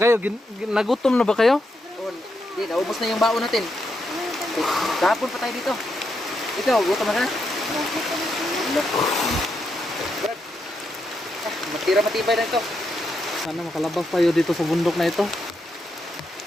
nagutom na ba kayo? Hindi, naubos na yung baon natin. Kahapon pa tayo dito. Ikaw, gutom na ka? Brad, matira matibay na ito. Sana makalabas tayo dito sa bundok na ito.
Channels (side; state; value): both; normal; correlation 0.82